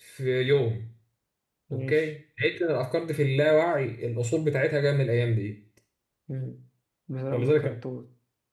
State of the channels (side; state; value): both; identical; correlation 1.00